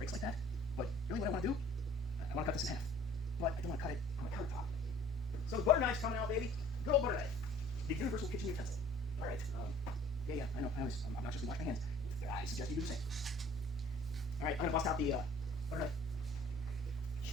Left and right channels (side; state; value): both; normal; correlation 0.52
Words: like that. But really what I want to do, I want to cut this in half. But I don't want to cut it on my countertop. So the butter knife's coming out, baby. Good old butter knife. The universal kitchen utensil. All right. Yeah, I know. I'm not just going to wash my hands. I suggest you do the same. All right, I'm going to bust out the butter knife.